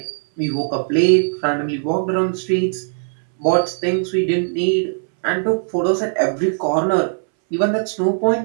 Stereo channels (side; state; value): left; silent; 65 dB below the other